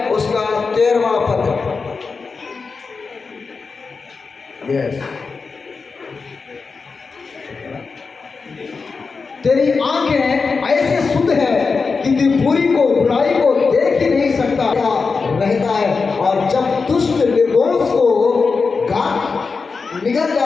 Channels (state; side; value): quieter; right; 4.7 dB